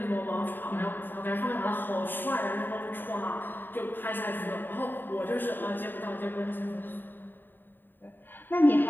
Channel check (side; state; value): right; late; 0.093 ms